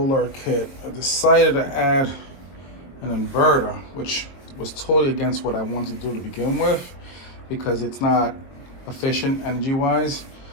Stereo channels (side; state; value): right; late; 22 ms